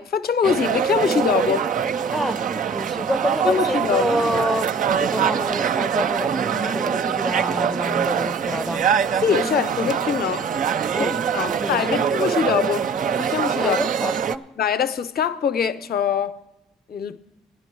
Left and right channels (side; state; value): both; normal; correlation 0.45